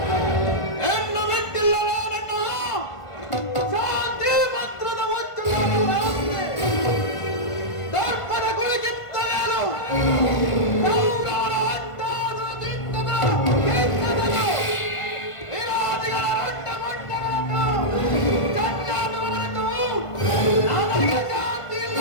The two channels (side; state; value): right; late; 1.5 ms